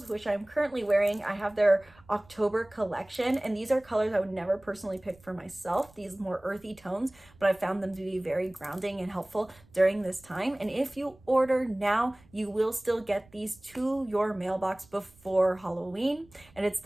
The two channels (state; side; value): noise; right; rumble, 27 dB below the sound